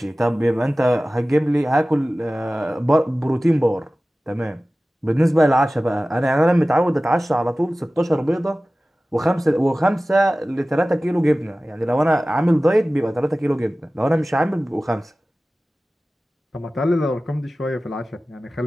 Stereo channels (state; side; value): normal; both; correlation 0.97